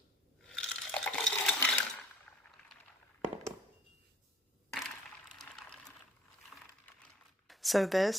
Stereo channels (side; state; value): both; normal; correlation 0.55